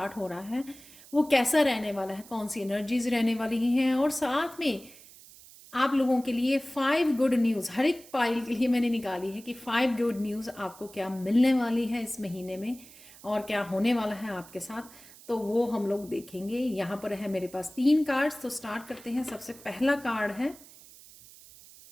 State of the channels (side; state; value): right; noise; hiss, 21 dB below the sound